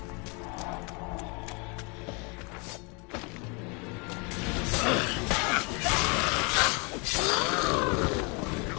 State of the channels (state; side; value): quieter; right; 31.9 dB